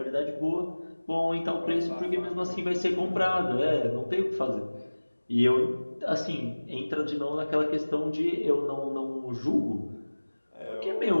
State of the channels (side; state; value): both; inverted; correlation -1.00